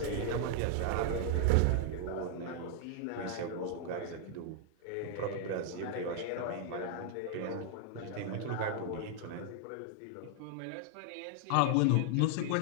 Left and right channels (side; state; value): both; different; correlation 0.00